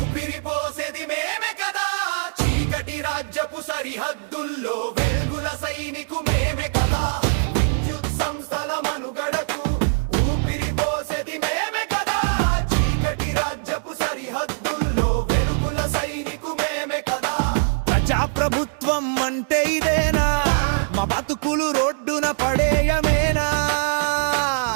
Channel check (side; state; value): left; silent; digital silence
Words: పోసేది మేమే కదా. చీకటి రాజ్యపు సరిహద్దుల్లో వెలుగుల సైనికు మేమే కదా. విద్యుత్ సంస్థల మనుగడకు ఊపిరి పోసేది మేమే కదా. చీకటి రాజ్యపు సరిహద్దుల్లో వెలుగుల సైనికు మేమే కదా. ప్రజాప్రభుత్వం అంటే ఇదేనా? మా బతుకులు రోడ్డున పడేయమేనా?